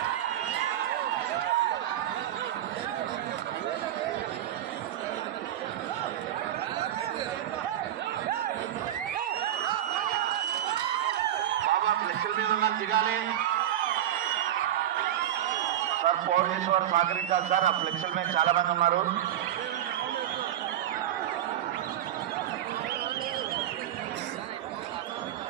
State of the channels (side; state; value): left; quieter; 11.6 dB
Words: ఫ్లెక్సీల మీద ఉన్నారు దిగాలి సార్. పోలీసు వారు సహకరించాలి సార్. ఆ ఫ్లెక్సీల మీద చాలా మంది ఉన్నారు.